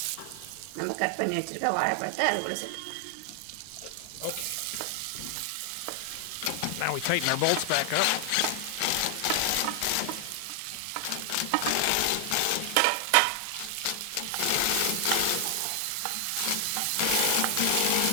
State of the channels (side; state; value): both; different; correlation 0.00